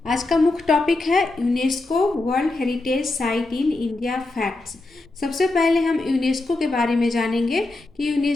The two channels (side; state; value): right; quieter; 3.0 dB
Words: आज का मुख्य टॉपिक है UNESCO world heritage site in India facts. सबसे पहले हम यूनेस्को के बारे में जानेंगे कि